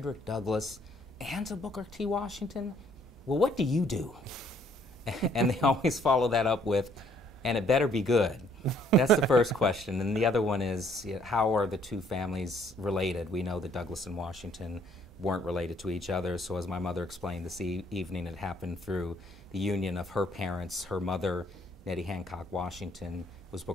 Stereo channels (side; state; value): both; normal; correlation 0.64